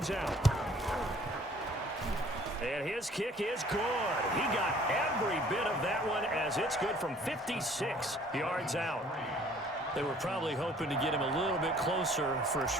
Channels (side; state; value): both; normal; correlation 0.55